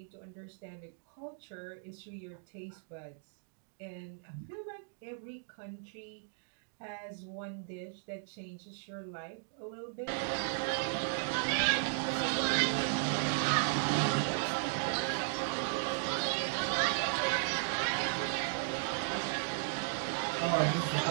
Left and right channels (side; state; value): left; silent; digital silence